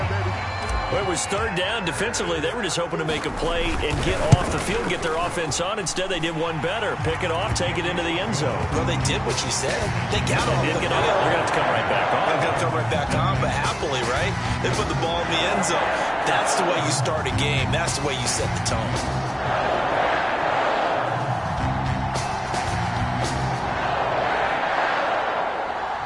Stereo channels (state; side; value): identical; both; correlation 1.00